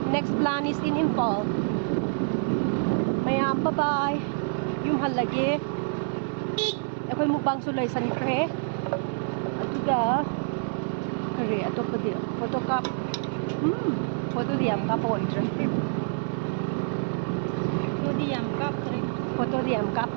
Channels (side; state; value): left; silent; 60 dB below the other